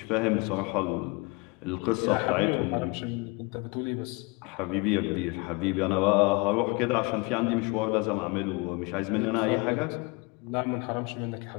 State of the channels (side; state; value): right; quieter; 27.8 dB